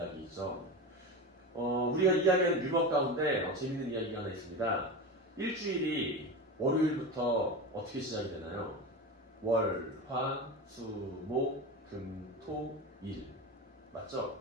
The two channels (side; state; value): both; normal; correlation 0.24